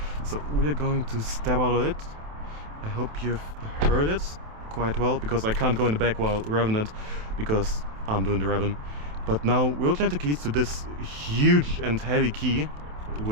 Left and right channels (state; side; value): late; left; 27 ms